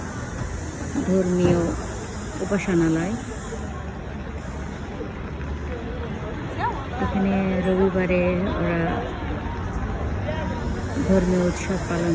ধর্মীয় উপাসনালয়। এখানে রবিবারে ওরা ধর্মীয় উৎসব পালন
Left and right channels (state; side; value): identical; both; correlation 1.00